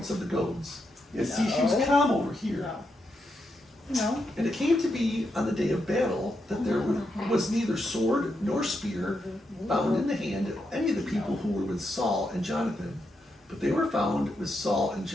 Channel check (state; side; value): normal; both; correlation 0.83